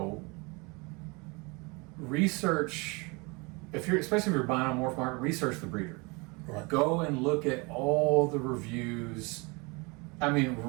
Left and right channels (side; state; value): left; quieter; 28.1 dB